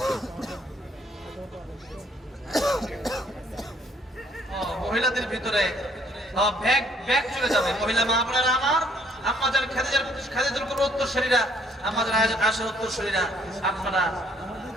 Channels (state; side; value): normal; both; correlation 0.64